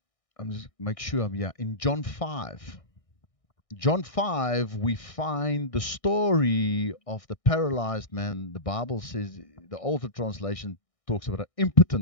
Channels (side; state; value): right; late; 1.6 ms